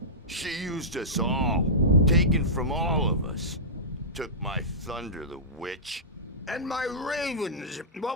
She used us all. Taken from all of us. Took my thunder, the witch. And my ravens,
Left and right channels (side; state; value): both; normal; correlation -0.17